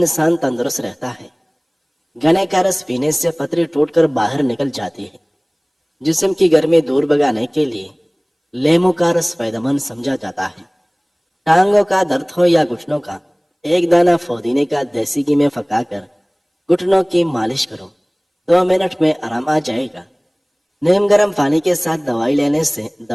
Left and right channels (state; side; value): identical; both; correlation 1.00